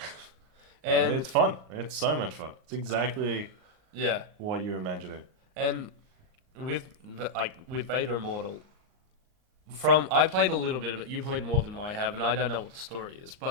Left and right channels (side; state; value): left; late; 38 ms